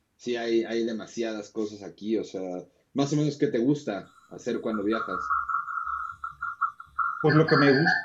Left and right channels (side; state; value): both; identical; correlation 1.00